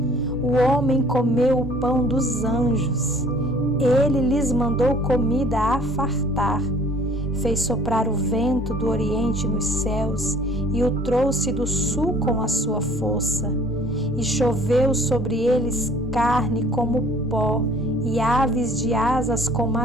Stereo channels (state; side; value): normal; both; correlation 0.53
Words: O homem comeu o pão dos anjos, ele lhes mandou comida a fartar. Fez soprar o vento do oriente nos céus e o trouxe do sul com a sua força. E choveu sobre eles carne como pó e aves de asas como a